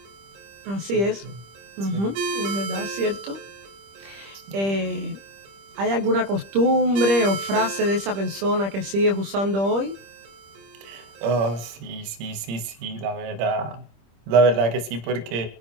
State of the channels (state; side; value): late; left; 25 ms